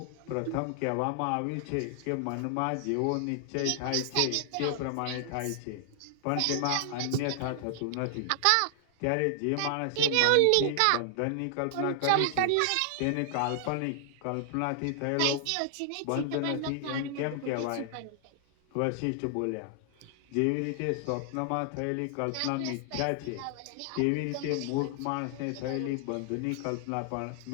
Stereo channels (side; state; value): both; different; correlation 0.00